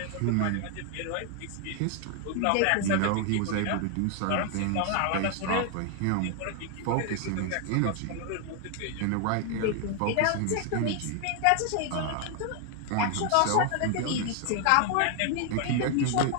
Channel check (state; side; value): different; both; correlation 0.00